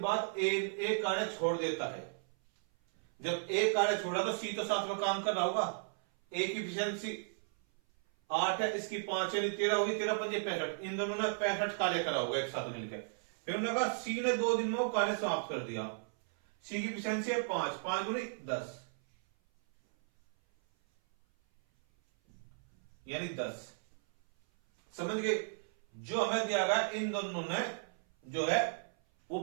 बाद ए कार्य छोड़ देता है। जब ए कार्य छोड़ा तो सी तो साथ में काम कर रहा होगा। ए की इफिशियंसी 8 है, इसकी 5 यानी 13 होगी, 13 पंजे 65, इन दोनों ने 65 कार्य करा होगा एक साथ मिलकर। फिर उन्होंने कहा सी ने 2 दिन में वो कार्य समाप्त कर दिया, सी की इफिशियंसी है 5, 5 गुनी 10 यानी 10। समझ गए, जो हमें दिया गया इन दोनों ने जो है वो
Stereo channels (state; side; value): silent; left; 54 dB below the other